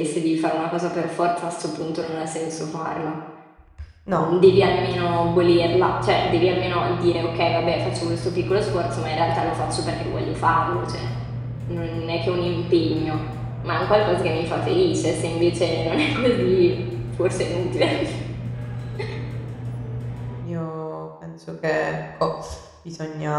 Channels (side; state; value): both; identical; correlation 1.00